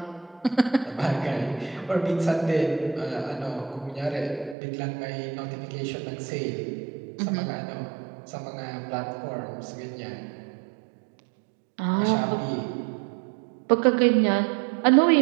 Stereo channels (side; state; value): left; drops out; at 4.5 s